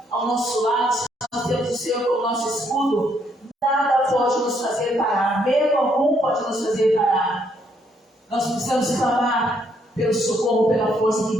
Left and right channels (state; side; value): normal; both; correlation 0.71